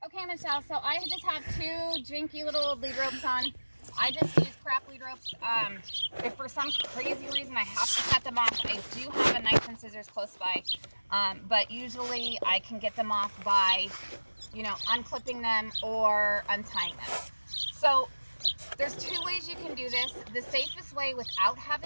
Hi, Michelle. So I just have two jinky little lead ropes on. I just use crap lead ropes. If for some crazy reason I have to cut them off, I do have a knife and scissors close by. But usually I can get them off by, unclipping them or untying them. So there's two ways you can do this. The safest way without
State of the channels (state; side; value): inverted; both; correlation -1.00